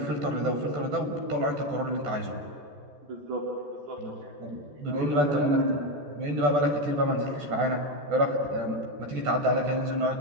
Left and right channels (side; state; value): left; late; 14 ms